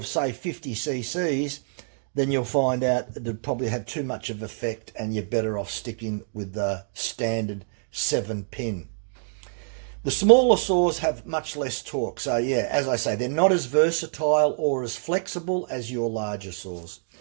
say, 50 cc's, then you'll find out that it'd probably have too much of effect and you're better off sticking with the standard 7-pin. The smaller saws have much less torque. So, yeah, as I say, they're not as versatile or as flexible as your larger saws.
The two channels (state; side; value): silent; left; digital silence